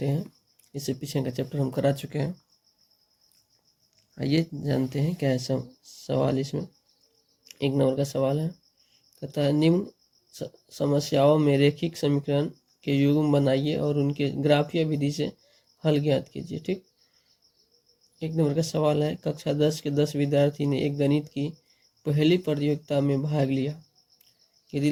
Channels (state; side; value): identical; both; correlation 1.00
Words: हैं। इससे पीछे का चैप्टर हम करा चुके हैं। आइए जानते हैं क्या है सवाल। इसमें 1 नंबर का सवाल है, कहता है निम्न समस्याओं में रैखिक समीकरण के युग्म बनाइए और उनके ग्राफीय विधि से हल ज्ञात कीजिए। ठीक, 1 नंबर का सवाल है, कक्षा 10 के 10 विद्यार्थी ने एक गणित की पहली प्रतियोगिता में भाग लिया। यदि